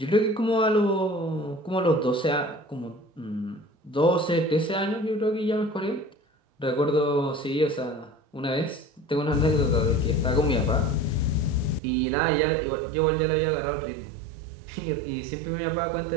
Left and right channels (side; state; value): left; drops out; at 11.8 s